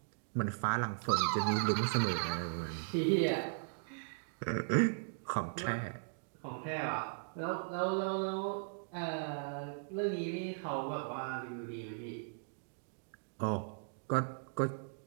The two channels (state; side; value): silent; left; digital silence